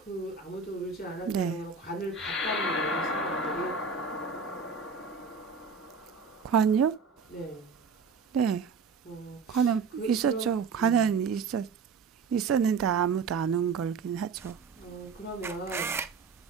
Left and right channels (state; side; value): quieter; left; 5.2 dB